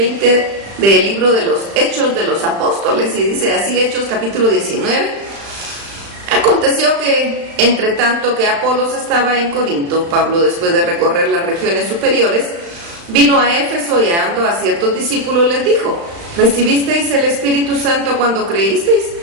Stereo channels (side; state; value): left; late; 35 ms